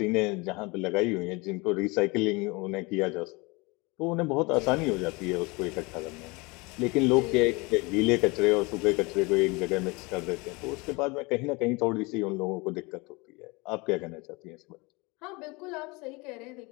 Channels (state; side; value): quieter; right; 26.0 dB